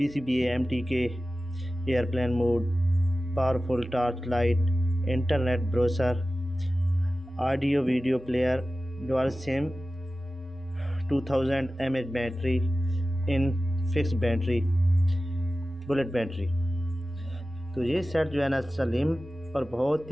MTK, airplane mode, powerful torch light, internet browser, audio video player, dual sim, 2000 mAh battery, infix battery, bullet battery. तो ये set जो है ना सलीम और बहुत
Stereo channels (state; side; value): normal; both; correlation 0.95